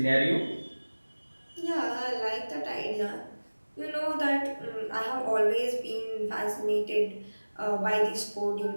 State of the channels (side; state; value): both; inverted; correlation -1.00